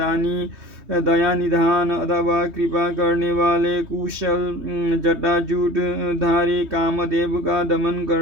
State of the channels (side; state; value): left; late; 3.2 ms